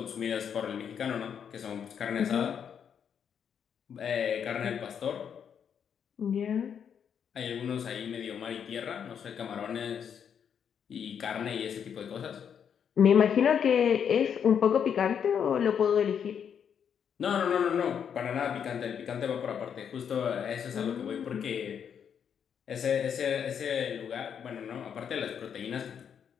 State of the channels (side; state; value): right; quieter; 7.9 dB